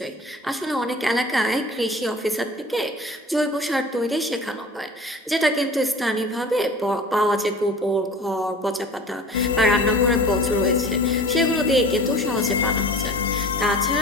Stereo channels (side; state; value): both; normal; correlation 0.41